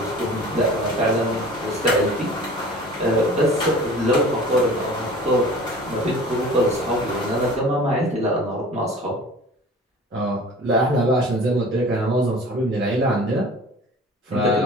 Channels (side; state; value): both; normal; correlation 0.42